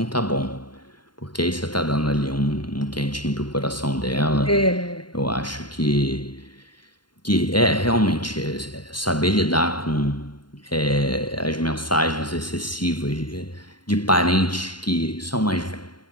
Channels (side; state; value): right; late; 0.71 ms